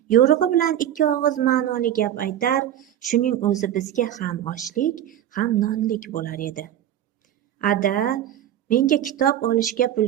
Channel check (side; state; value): left; quieter; 11.3 dB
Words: yo'rig'i bilan ikki og'iz ma'noli gap aytar, shuning o'zi bizga ham oshlik, ham nonlik bo'lar edi. Ada, menga kitob olishga pul